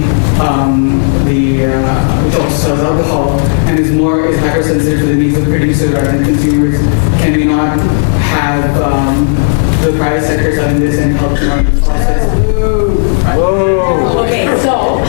which also sells alcohol and is hypersensitive to the needs of producers rather than consumers, can we not have the private sector selling this and help them out this process? Okay, so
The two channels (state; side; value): silent; right; digital silence